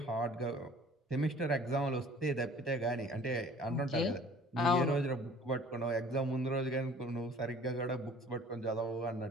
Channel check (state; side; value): normal; both; correlation 0.49